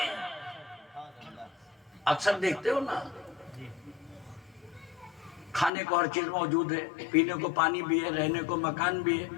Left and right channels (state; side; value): drops out; right; at 5.7 s